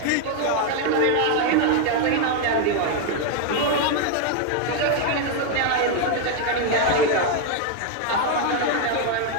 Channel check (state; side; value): different; both; correlation 0.01